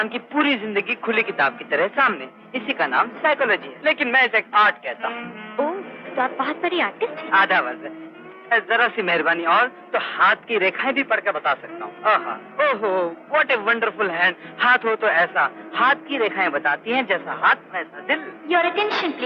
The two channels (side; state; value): both; identical; correlation 1.00